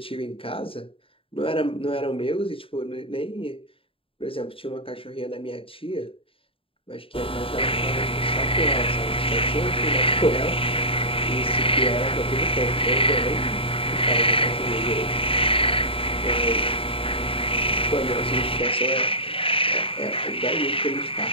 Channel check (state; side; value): late; right; 0.27 ms